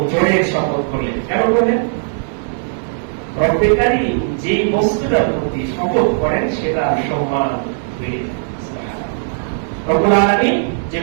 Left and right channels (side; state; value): left; silent; 68 dB below the other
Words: জোরের শপথ করলেন। কেন করলেন? রব্বুল কারীম যে বস্তুটার প্রতি শপথ করেন সেটা সম্মান বেড়ে যায়। সুবহানাল্লাহ। রব্বুল আলামিন যে